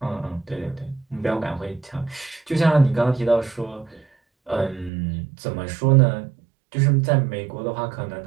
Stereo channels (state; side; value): drops out; left; at 4.9 s